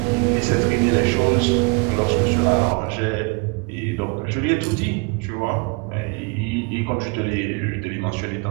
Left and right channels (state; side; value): quieter; left; 31.2 dB